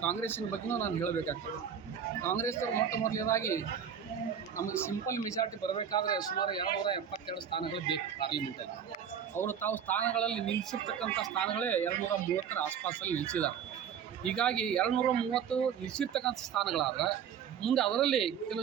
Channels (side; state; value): left; quieter; 8.2 dB